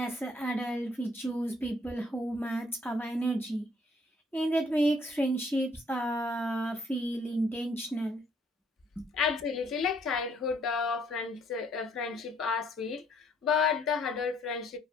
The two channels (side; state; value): both; normal; correlation 0.65